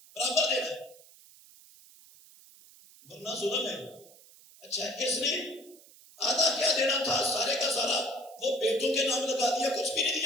برابر دینا ہے، ورنہ ظلم ہے۔ اچھا، اس نے آدھا کیا دینا تھا، سارے کا سارا وہ بیٹوں کے نام لگا دیا، کچھ بھی نہیں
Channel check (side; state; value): right; noise; hiss, 23 dB below the sound